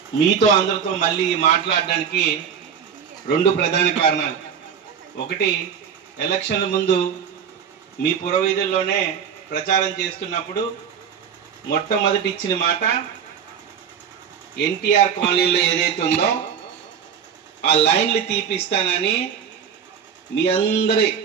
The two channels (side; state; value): left; quieter; 7.5 dB